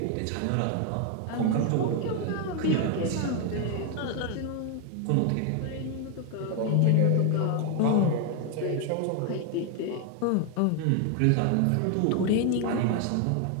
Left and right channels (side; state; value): both; different; correlation 0.01